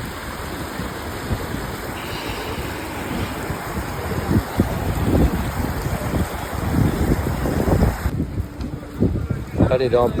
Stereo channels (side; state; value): both; identical; correlation 1.00